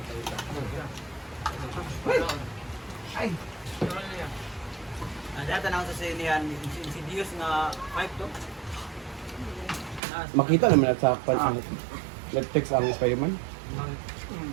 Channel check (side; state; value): left; drops out; at 10.0 s